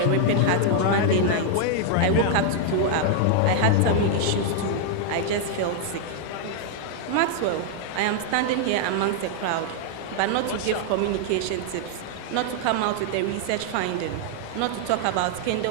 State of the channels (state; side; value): different; both; correlation -0.01